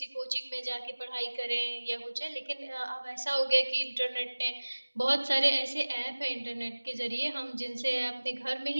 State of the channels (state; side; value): inverted; both; correlation -1.00